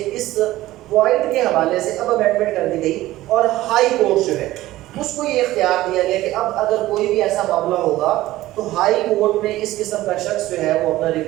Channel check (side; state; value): left; quieter; 16.3 dB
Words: اس پوائنٹ کے حوالے سے اب امینڈمنٹ کر دی گئی اور ہائی کورٹ جو ہے اس کو یہ اختیار دیا گیا کہ اب اگر کوئی بھی ایسا معاملہ ہوگا تو ہائی کورٹ میں اس قسم کا شخص جو ہے وہ اپنا